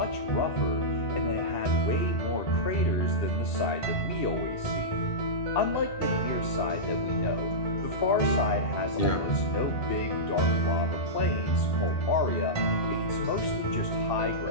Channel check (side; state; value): right; late; 2.7 ms